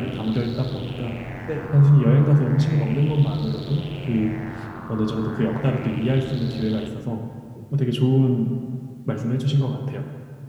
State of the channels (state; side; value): identical; both; correlation 1.00